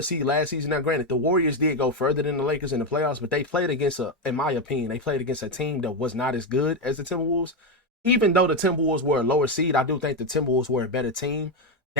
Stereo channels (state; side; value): normal; both; correlation 0.09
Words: seed last season. Now, granted, the Warriors did go further than the Lakers in the playoffs, but they played against in my opinion, they played against a team that was not as good as the Timberwolves. Even though the Timberwolves were a lower seed, I do think the Timberwolves were a better team